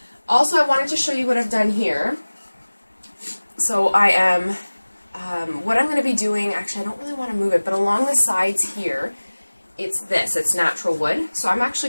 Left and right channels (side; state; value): both; inverted; correlation -1.00